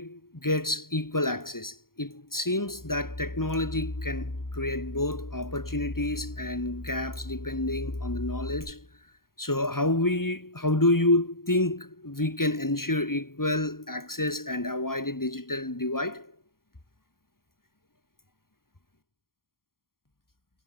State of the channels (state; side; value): late; right; 0.92 ms